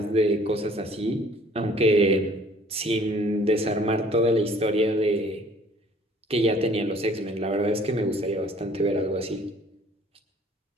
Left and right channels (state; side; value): normal; both; correlation 0.55